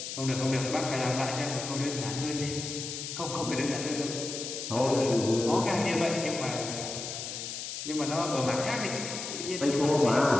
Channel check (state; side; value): noise; left; hiss, 6 dB below the sound